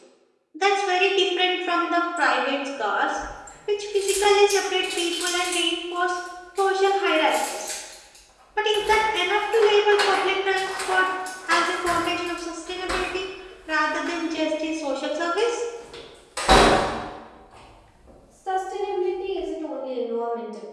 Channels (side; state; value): both; identical; correlation 1.00